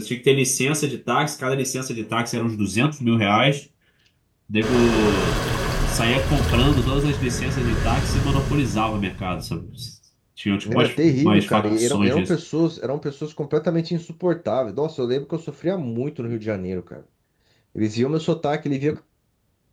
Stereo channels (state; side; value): identical; both; correlation 1.00